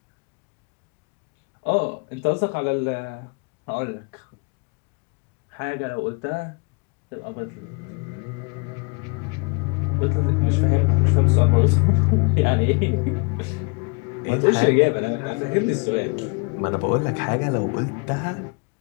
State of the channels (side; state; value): right; quieter; 31.9 dB